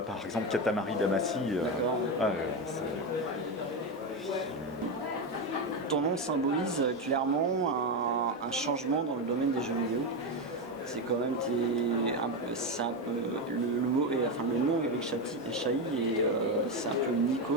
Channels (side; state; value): both; normal; correlation 0.12